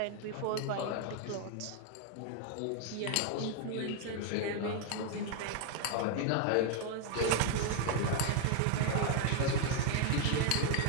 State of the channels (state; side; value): different; both; correlation 0.00